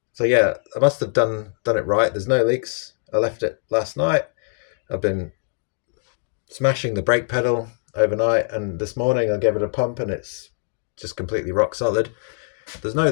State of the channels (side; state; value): right; silent; 64 dB below the other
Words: yeah, I must have done it right. There's no leaks. I left it last night. I've been smashing the brake pedal overnight, and this morning I gave it a pump and it's just completely rock solid. There's no